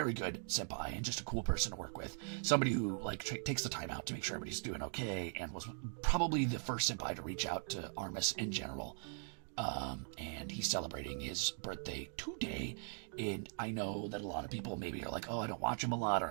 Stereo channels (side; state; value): left; silent; 51 dB below the other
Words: good senpai and just a cool person to work with. Somebody who takes the time out to make sure everybody's doing okay, and was probably the first senpai to reach out to Armis in general. And he's celebrating his birthday today, and I know that a lot of people maybe are like, oh, I don't watch him a lot,